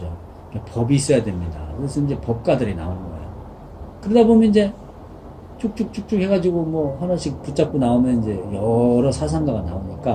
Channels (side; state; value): both; identical; correlation 1.00